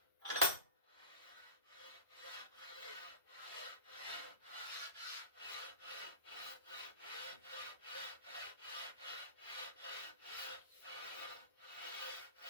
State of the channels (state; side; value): inverted; both; correlation -0.34